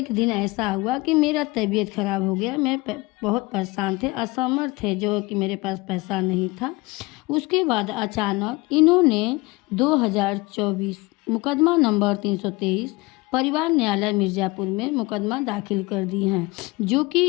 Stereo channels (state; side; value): quieter; right; 23.3 dB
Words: दिन ऐसा हुआ कि मेरा तबीयत ख़राब हो गया, मैं बहुत परेशान थे, असमर्थ थे, जो कि मेरे पास पैसा नहीं था। उसके बाद अचानक इन्होंने 2024 मुकदमा नंबर 323 परिवार न्यायालय मिर्ज़ापुर में मुकदमा दाखिल कर दी हैं, जो कि